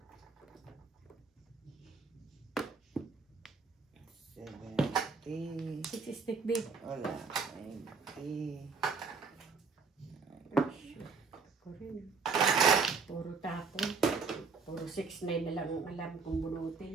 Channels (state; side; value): quieter; left; 4.9 dB